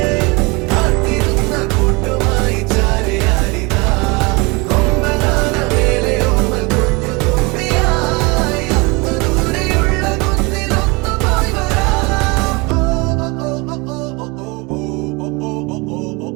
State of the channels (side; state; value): left; quieter; 27.0 dB